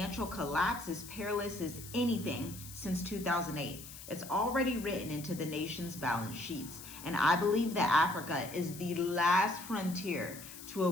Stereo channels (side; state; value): left; noise; hiss, 14 dB below the sound